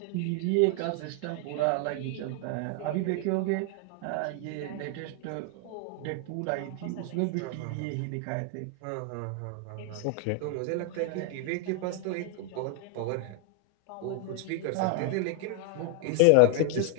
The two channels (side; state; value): both; different; correlation 0.00